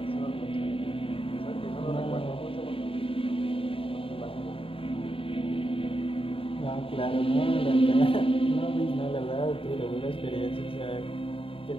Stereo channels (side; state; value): right; late; 0.26 ms